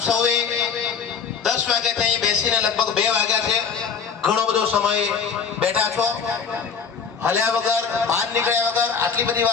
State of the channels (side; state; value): right; quieter; 6.2 dB